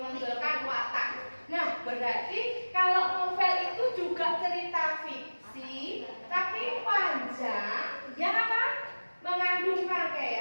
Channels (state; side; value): inverted; both; correlation -1.00